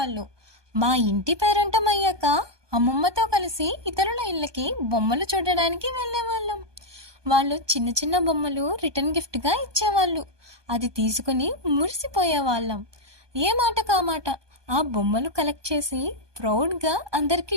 మా ఇంటి పేరంటం అయ్యాక అమ్మమ్మతో కలిసి ఇతరుల ఇళ్ళకి బొమ్మలు చూడడానికి వెళ్ళేవాళ్ళం. వాళ్ళు చిన్న చిన్న బొమ్మలు రిటర్న్ గిఫ్ట్గా ఇచ్చేవాళ్ళు. అది తీసుకుని మురిసిపోయేవాళ్ళం. ఏ మాట కామాట ఆ బొమ్మలు కలెక్ట్ చేసి ప్రౌడ్గా అందరికీ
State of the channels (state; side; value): late; left; 1.2 ms